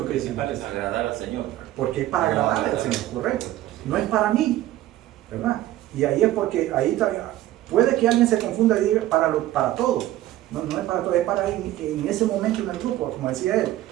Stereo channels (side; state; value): left; quieter; 14.6 dB